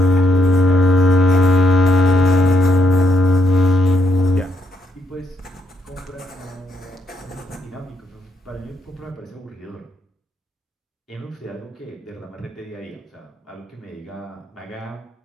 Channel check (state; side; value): normal; both; correlation 0.76